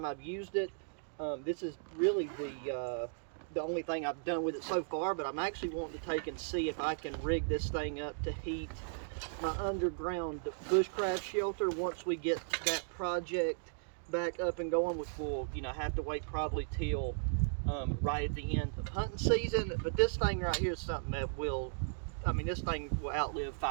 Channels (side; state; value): left; silent; digital silence